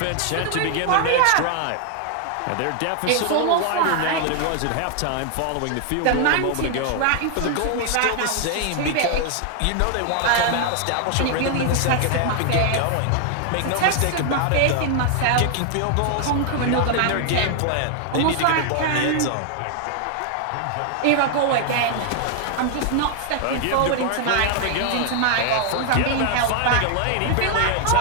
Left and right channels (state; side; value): different; both; correlation 0.00